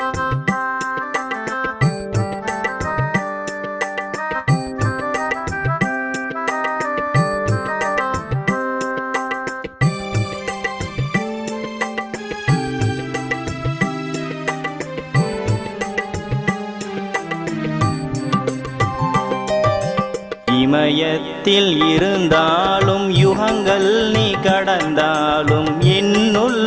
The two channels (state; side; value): identical; both; correlation 1.00